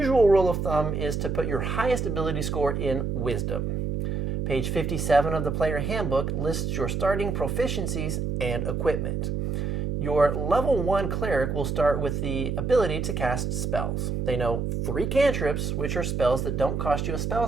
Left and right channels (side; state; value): right; noise; hum, 1 dB below the sound